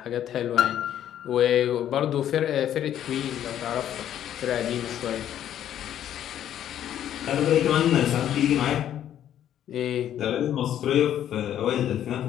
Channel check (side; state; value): right; quieter; 10.8 dB